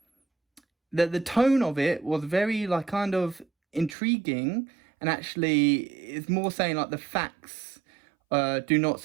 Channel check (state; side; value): drops out; left; at 4.0 s